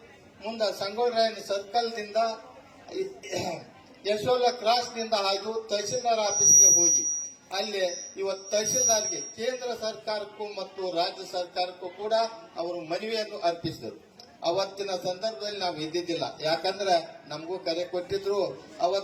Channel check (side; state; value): both; identical; correlation 1.00